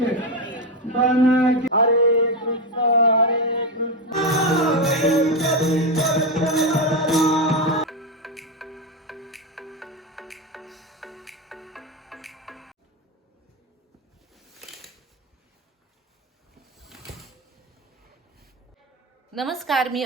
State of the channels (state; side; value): normal; both; correlation 0.11